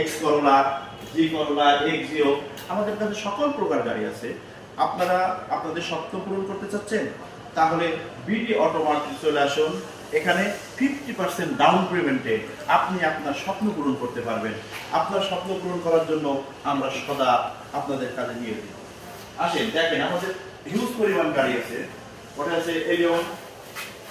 করোলা, জি করোলা, এক্সিও, আমাদের কাছে সকল প্রকার গাড়ি আছে। আপনারা আপনাদের স্বপ্ন পূরণ করতে চাচ্ছেন, তাহলে বিডি অটোমার্টে চলে আসুন। এখানে 50% ডাউন পেমেন্টে আপনি আপনার স্বপ্ন পূরণ করতে পারবেন। আপনার স্বপ্ন পূরণ করার জন্য আমরা সদা আপনাদের কাজে নিয়ে দিই। আসেন দেখেন, আমাদের হিউজ পরিমাণ গাড়ি আছে। ওটা আছে এলিয়ন,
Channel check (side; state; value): both; identical; correlation 1.00